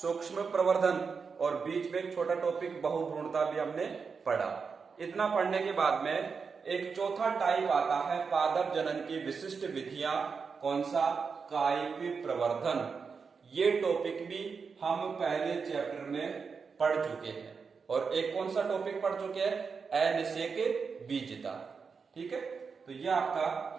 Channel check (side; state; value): left; quieter; 5.4 dB